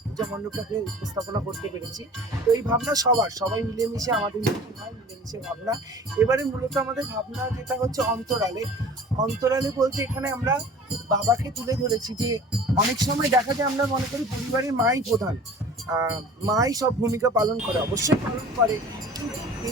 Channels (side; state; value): both; normal; correlation 0.44